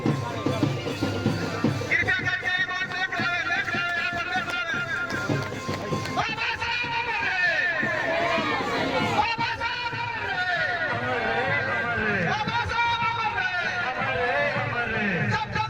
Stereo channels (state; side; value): noise; left; rumble, 22 dB below the sound